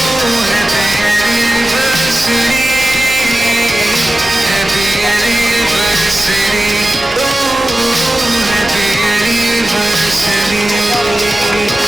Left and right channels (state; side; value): normal; both; correlation 0.95